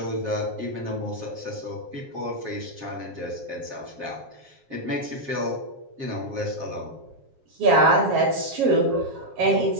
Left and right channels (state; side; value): late; left; 7.4 ms